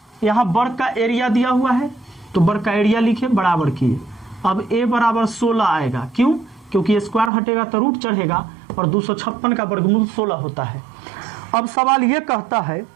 यहाँ वर्ग का एरिया दिया हुआ है तो वर्ग का एरिया लिखे, बराबर किए। अब a बराबर 16 आएगा, क्यों, क्योंकि स्क्वायर हटेगा तो रूट चढ़ेगा, और 256 का वर्गमूल 16 होता है। अब सवाल ये कहता है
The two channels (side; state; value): left; drops out; at 7.3 s